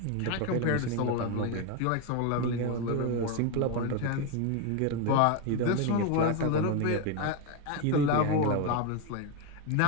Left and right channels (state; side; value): different; both; correlation 0.02